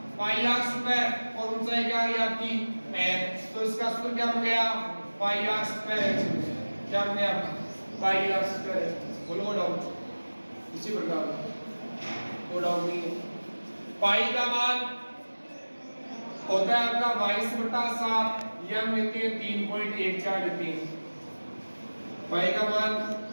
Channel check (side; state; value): both; inverted; correlation -1.00